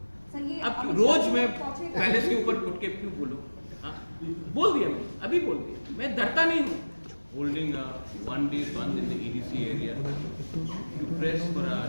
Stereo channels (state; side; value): inverted; both; correlation -1.00